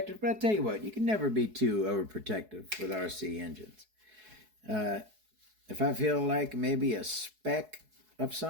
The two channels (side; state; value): left; late; 4.7 ms